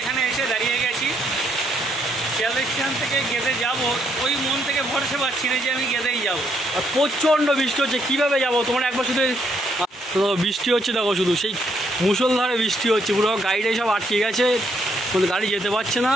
এসে দাঁড়িয়ে গেছি। শিয়ালদা স্টেশন থেকে গেদে যাব, ওই মন থেকে ভরসা পাচ্ছি না যে আমি গেদেই যাব। আর প্রচণ্ড বৃষ্টি হচ্ছে, কীভাবে যাবো? তোমরা একবার শুধু বৃষ্টি হচ্ছে দেখো, শুধু সেই মুষলধারে বৃষ্টি হচ্ছে, পুরো গাড়িটাই সব আটকে গেছে, কোনো গাড়ি যেতে পারছে না।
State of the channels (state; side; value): normal; both; correlation 0.73